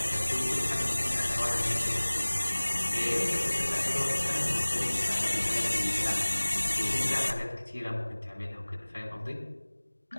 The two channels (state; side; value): inverted; both; correlation -1.00